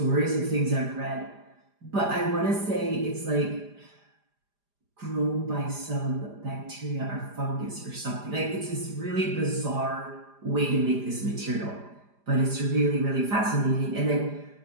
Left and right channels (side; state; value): left; late; 4.9 ms